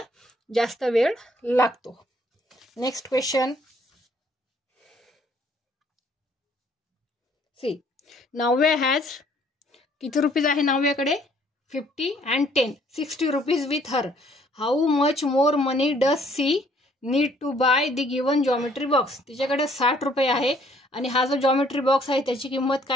जास्त वेळ लागतो. Next question. See, Navya has किती रुपीज आहे नाव्याकडे? 50 and 10, 60 rupees with her. How much more money does she need to buy the given geometry box? तिच्याकडे 60 रुपये आहे आणि हा जो जॉमेट्री बॉक्स आहे त्याची किंमत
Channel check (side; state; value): both; normal; correlation 0.62